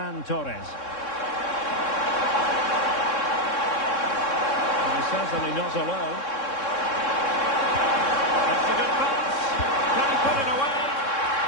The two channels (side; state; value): right; late; 3.6 ms